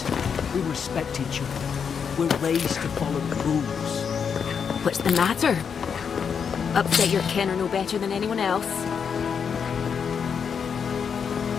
we respect each other. We're raised to follow the rules. What's the matter? Upset your kin are no better than anyone else.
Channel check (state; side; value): quieter; right; 6.7 dB